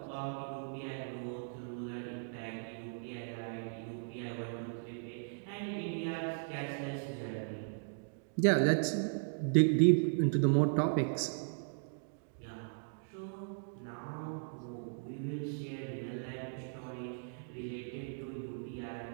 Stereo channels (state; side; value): silent; left; digital silence